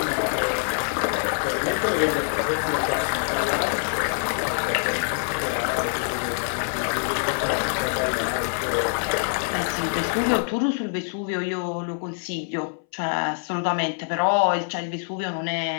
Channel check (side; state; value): right; silent; 62 dB below the other